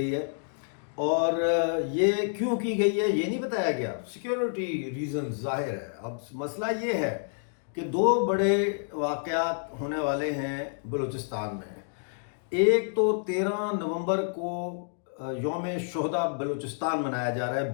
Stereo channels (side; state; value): right; silent; digital silence